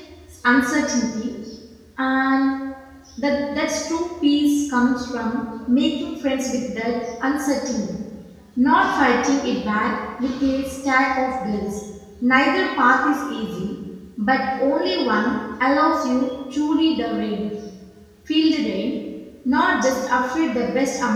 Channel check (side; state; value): both; identical; correlation 1.00